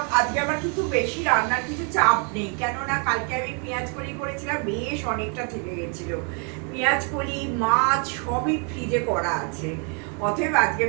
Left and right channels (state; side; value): quieter; left; 38.4 dB